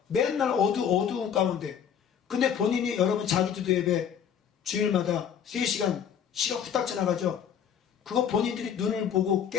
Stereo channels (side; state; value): right; quieter; 8.3 dB